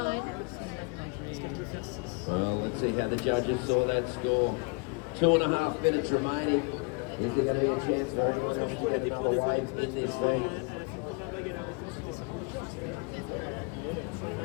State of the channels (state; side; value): quieter; right; 31.9 dB